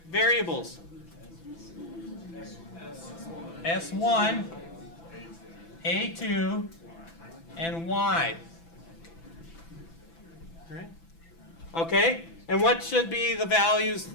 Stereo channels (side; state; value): right; late; 6.0 ms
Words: S1, A2, and Y. All right? Okay? And what should be the values